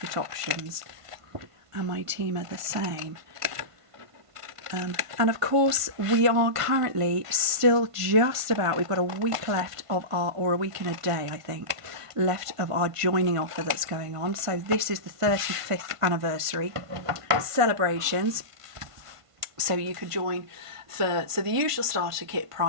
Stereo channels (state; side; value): late; left; 1.5 ms